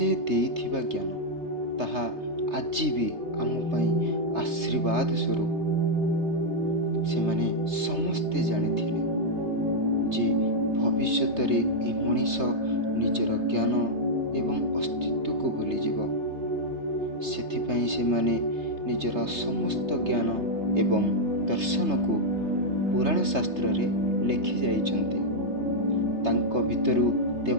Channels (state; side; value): late; left; 3.3 ms